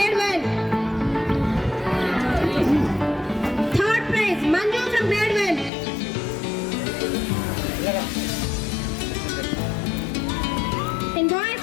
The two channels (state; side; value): drops out; right; at 5.7 s